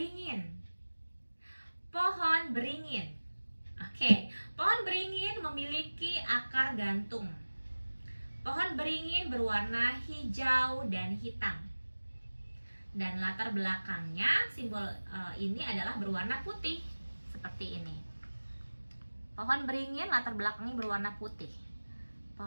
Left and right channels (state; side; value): inverted; both; correlation -1.00